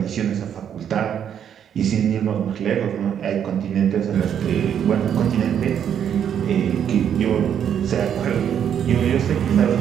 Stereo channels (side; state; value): left; quieter; 8.9 dB